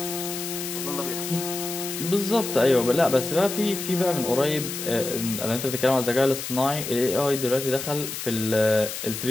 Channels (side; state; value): left; noise; hiss, 6 dB below the sound